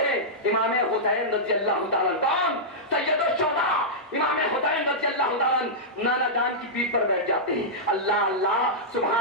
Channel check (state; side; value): normal; both; correlation -0.11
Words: امام حسین رضی اللہ تعالیٰ کون؟ سید الشہداء امام حسین رضی اللہ تعالیٰ نانا جان کی پیٹھ پر بیٹھ جاتے ہیں۔ اللہ اللہ،